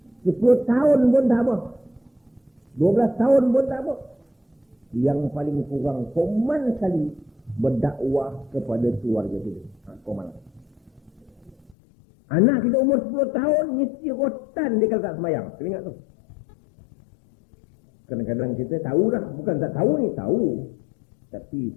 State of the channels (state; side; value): drops out; right; at 11.8 s